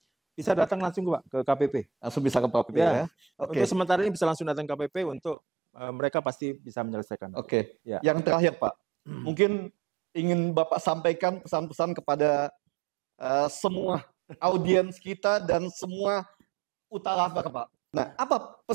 bisa datang langsung ke KPP. Langsung bisa ke KPP ya. Untuk sementara ini bisa langsung datang ke KPP untuk mereka pasti bisa menyelesaikan. Yang terakhir Pak, mungkin ingin Bapak sampaikan pesan-pesan kepada semua audiens kita dan semua UTA Lover Pak. Nah, apa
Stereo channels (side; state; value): left; drops out; at 5.4 s